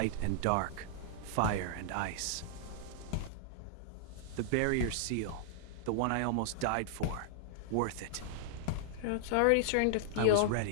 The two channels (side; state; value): both; different; correlation -0.01